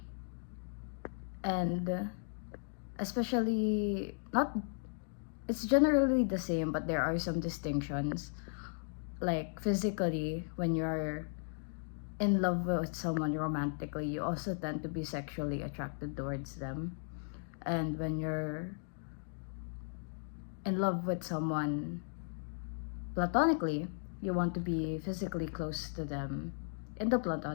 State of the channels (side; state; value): right; silent; digital silence